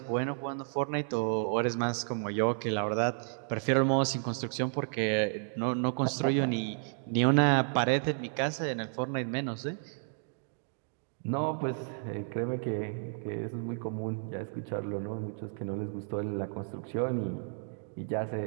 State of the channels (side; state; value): left; silent; 56 dB below the other